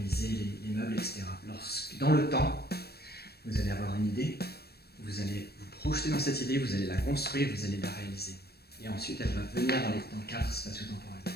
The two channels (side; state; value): right; late; 0.47 ms